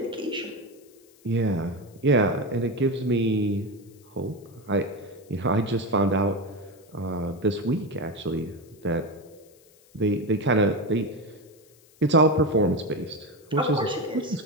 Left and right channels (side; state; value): left; noise; hiss, 29 dB below the sound